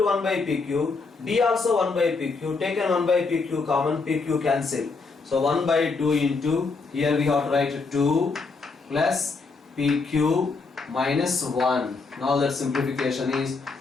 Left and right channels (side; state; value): right; quieter; 4.2 dB